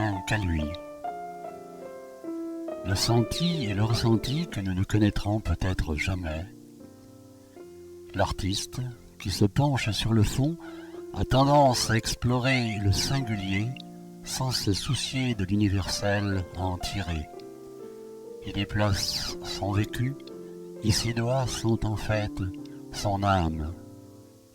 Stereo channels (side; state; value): both; identical; correlation 1.00